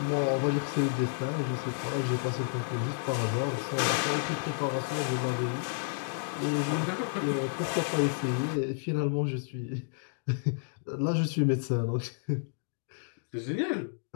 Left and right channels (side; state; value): right; silent; digital silence